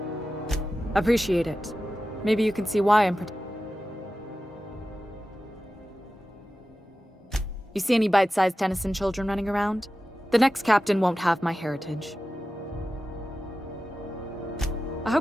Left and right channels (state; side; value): normal; both; correlation 0.94